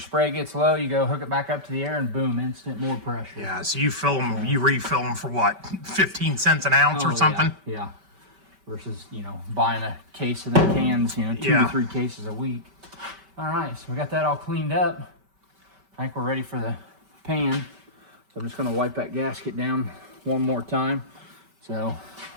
gets low, you go hook it back up to the air, and boom, instant more pressure. Yeah, so you refill them for what, 15 cents an ounce or something? Yeah. Versus buying a case of them cans, 2 to 3 cases a week. All right, so we got that all cleaned up. I think we're ready for the pan. So I'm just going to wipe that gasket down one more time. So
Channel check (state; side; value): late; left; 5.2 ms